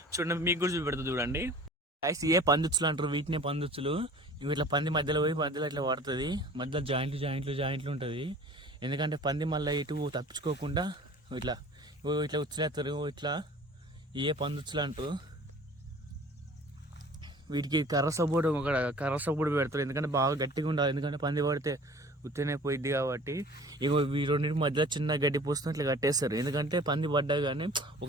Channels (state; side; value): normal; both; correlation 0.46